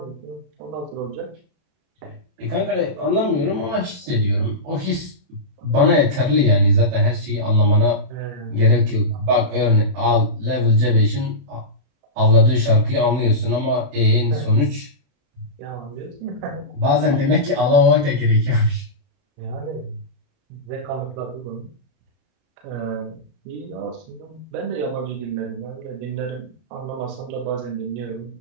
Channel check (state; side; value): late; left; 31 ms